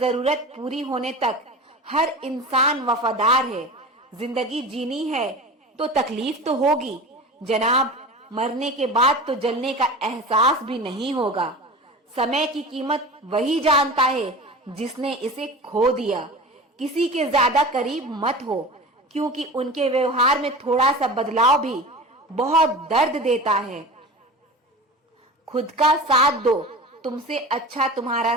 पूरी होने तक हर इंसान वफादार है। जिंदगी जीनी है तो तकलीफ तो होगी जनाब, मरने के बाद तो जलने का एहसास भी नहीं होगा। समय की कीमत वही जानता है जिसने इसे खो दिया। किसी के ज्यादा करीब मत हो, क्योंकि उनके व्यवहार में थोड़ा सा बदलाव भी बहुत दर्द देता है। खुद का साथ दो, तुमसे अच्छा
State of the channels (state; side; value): normal; both; correlation 0.33